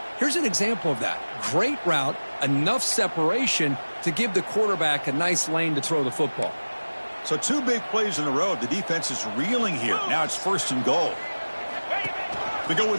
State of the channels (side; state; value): both; inverted; correlation -1.00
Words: Here's an example of that. Great route, enough separation to give the quarterback a nice lane to throw the football. So 2 big plays in a row. The defense is reeling here. Now it's 1st and goal. They go with